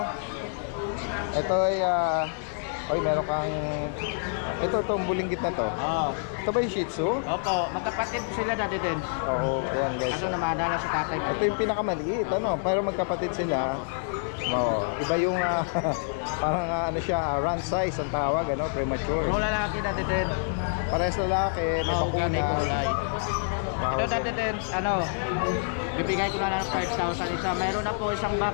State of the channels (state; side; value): silent; right; 57 dB below the other